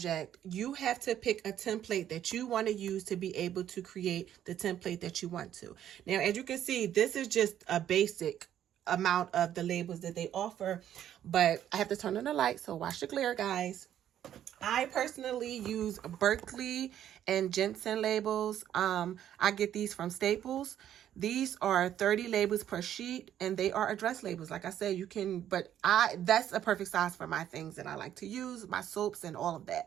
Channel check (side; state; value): left; quieter; 10.7 dB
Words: you have to pick a template that you want to use to be able to create the template that you want to. Now, as you can see, this is just a basic amount of the labels that they offer, but I have to turn on the light, so watch the glare, guys. I personally use Berkeley and Jensen labels. I get these from Staples. These are 30 labels per sheet, and they are address labels. Like I said, you can, but that's a perfect size for my things that I like to use, my soaps and all of